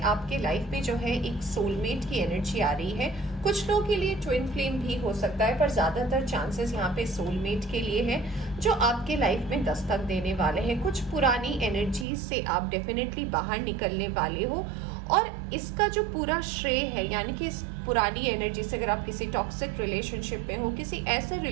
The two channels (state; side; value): drops out; left; at 12.1 s